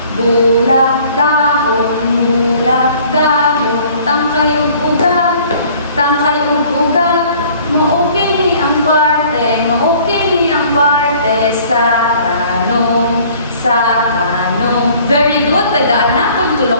Bulak dahon, tangkay ug ugat, maukini ang parte, sa kano. Very good, tagaan na kung tulo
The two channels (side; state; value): both; inverted; correlation -0.54